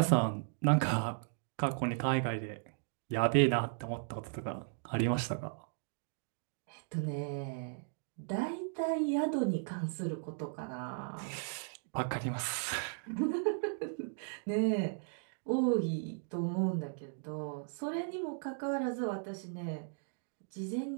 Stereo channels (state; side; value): silent; left; digital silence